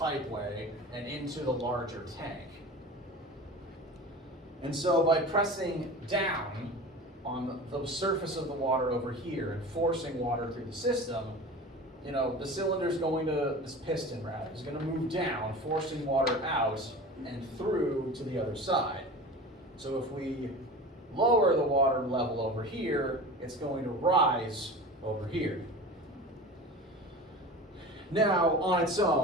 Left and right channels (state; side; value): normal; both; correlation 0.34